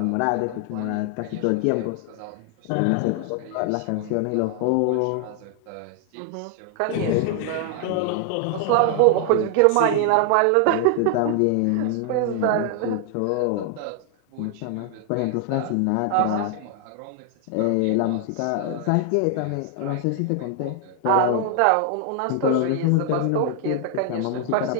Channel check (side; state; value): both; different; correlation 0.00